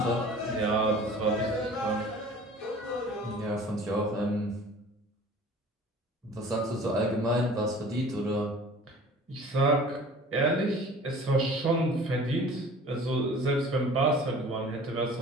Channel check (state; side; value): normal; both; correlation 0.45